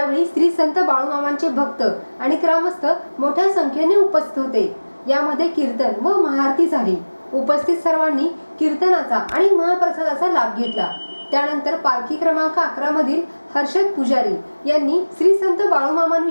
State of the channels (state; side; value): inverted; both; correlation -1.00